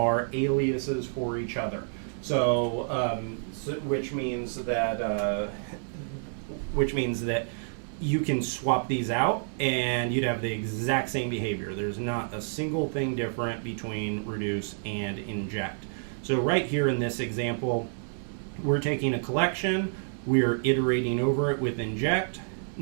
aliases for each other. So, which means that you can swap these out and you'd have the exact same behavior. There's not a single thing different between reduce and inject. So right here in this example, we're taking a collection, we're iterating over it with inject.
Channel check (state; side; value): silent; left; 59 dB below the other